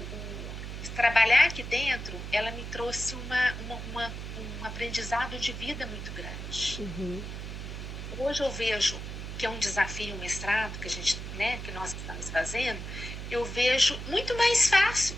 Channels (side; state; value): right; noise; hum, 7 dB below the sound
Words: trabalhar aqui dentro, ela me trouxe um aprendizado de vida muito grande. Hoje eu vejo que é um desafio, um mestrado que nós estamos fazendo, eu vejo muito mais fácil